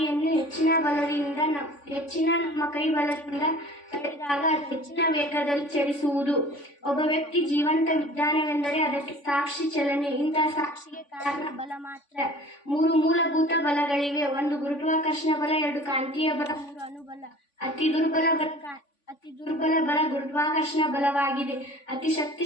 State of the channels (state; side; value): late; right; 3.5 ms